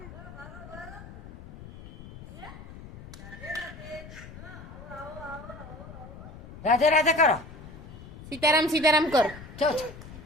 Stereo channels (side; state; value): left; noise; rumble, 15 dB below the sound